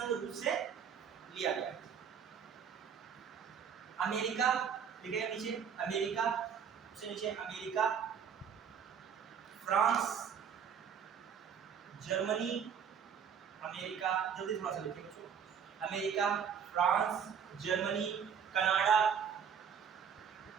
रूस से लिया गया। अमेरिका लिखेगा नीचे, अमेरिका से नीचे अमेरिका, फ्रांस, जर्मनी, अमेरिका, जल्दी थोड़ा सा लिखिए बच्चों, America, France, Germany, Canada,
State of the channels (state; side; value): quieter; left; 7.4 dB